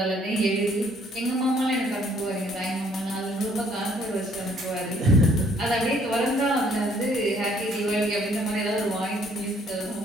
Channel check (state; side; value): normal; both; correlation 0.64